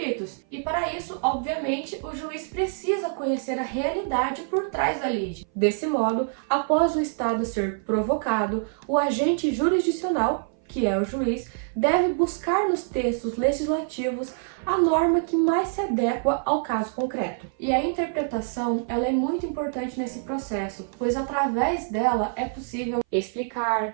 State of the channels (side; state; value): left; silent; 57 dB below the other